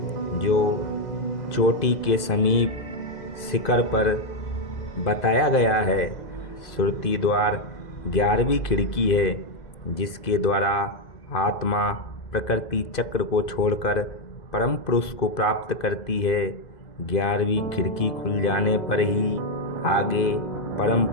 जो चोटी के समीप शिखर पर बताया गया है। सुरति द्वार 11वीं खिड़की है, जिसके द्वारा आत्मा प्रकृति चक्र को छोड़कर परम पुरुष को प्राप्त करती है। 11वीं खिड़की खुल जाने पर ही आगे परम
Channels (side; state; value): right; late; 2.0 ms